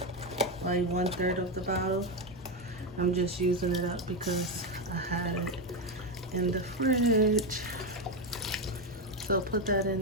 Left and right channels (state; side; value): normal; both; correlation 0.09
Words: like 1/3 of the bottle. I'm just using it up because I had it in the fridge. So put that